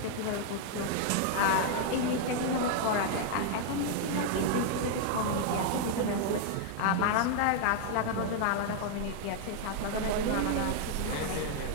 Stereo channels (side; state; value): both; different; correlation 0.00